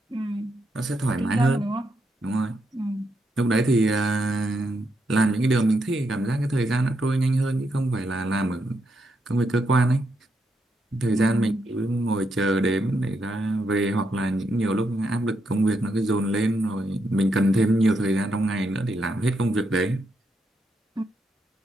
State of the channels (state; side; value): normal; both; correlation 0.80